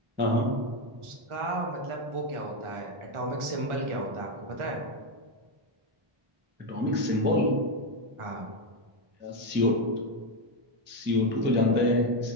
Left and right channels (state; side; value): late; left; 1.4 ms